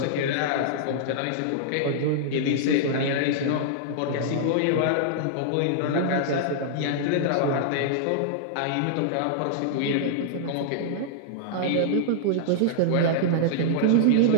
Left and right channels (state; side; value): different; both; correlation -0.01